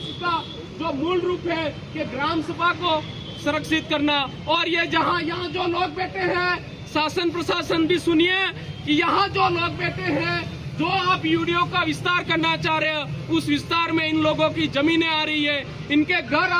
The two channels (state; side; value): identical; both; correlation 1.00